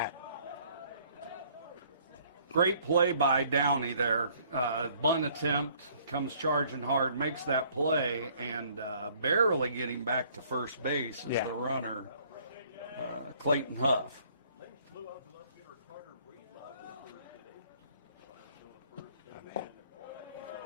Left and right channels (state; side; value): inverted; both; correlation -0.60